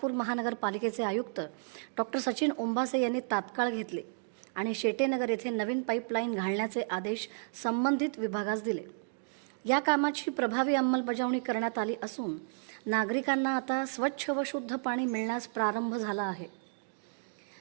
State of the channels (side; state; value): left; silent; digital silence